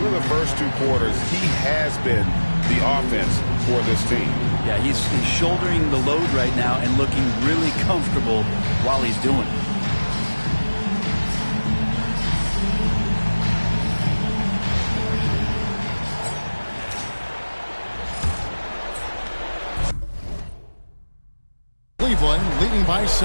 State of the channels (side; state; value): both; inverted; correlation -1.00